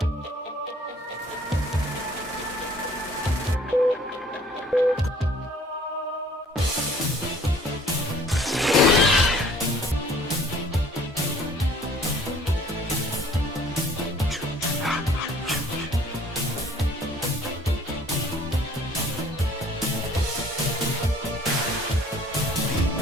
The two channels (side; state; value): both; normal; correlation 0.55